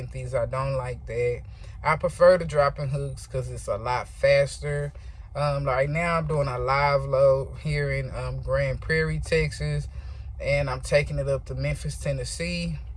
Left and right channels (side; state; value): both; identical; correlation 1.00